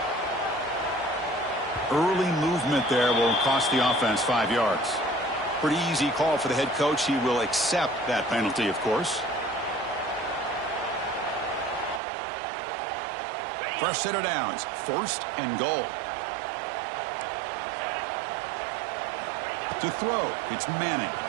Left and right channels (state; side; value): drops out; left; at 12.0 s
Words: Early movement there will cost the offense 5 yards. Pretty easy call for the head coach. He will accept that penalty, of course. Fresh set of downs. 1st and goal. To throw, it's Manning.